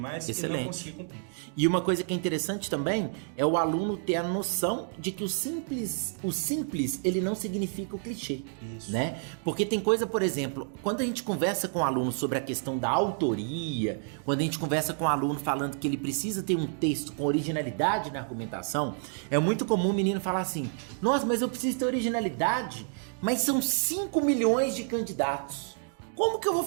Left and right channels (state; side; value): silent; left; 58 dB below the other